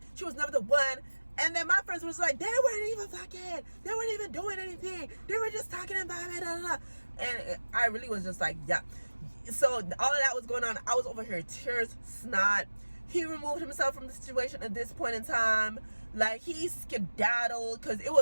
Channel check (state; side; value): inverted; both; correlation -1.00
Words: She was never the one. And then my friends was like, they weren't even fucking. They weren't even doing anything. They were just talking about it. Blah, blah, blah. And I really was just like, yeah. So all of that was going on. I was over here, tears, snot. He removed himself from the situation at this point in time. Like, he skedaddled because it